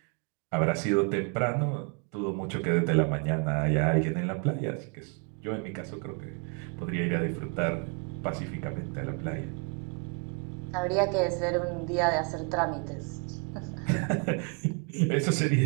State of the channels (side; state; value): left; quieter; 36.2 dB